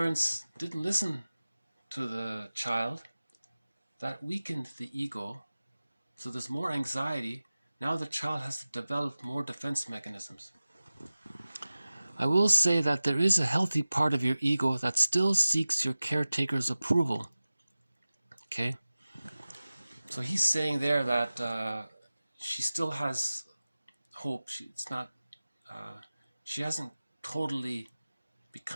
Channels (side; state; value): both; inverted; correlation -0.97